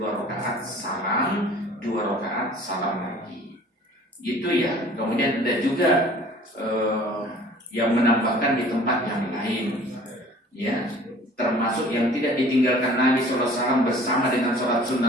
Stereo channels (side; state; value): both; normal; correlation 0.49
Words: rakaat salam, 2 rakaat salam lagi. Gitu ya. Kemudian ada juga yang menambahkan di tempat yang lain, ya, termasuk yang tidak ditinggalkan Nabi SAW bersama dengan sholat